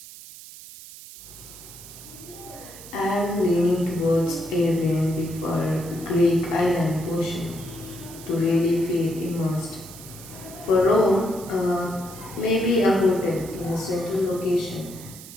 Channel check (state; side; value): noise; right; hiss, 16 dB below the sound